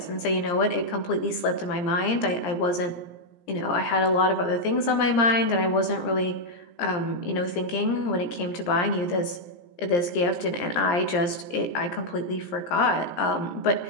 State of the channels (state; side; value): late; right; 17 ms